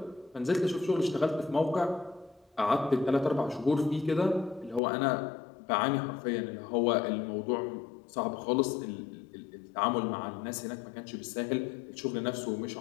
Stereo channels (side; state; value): right; drops out; at 4.8 s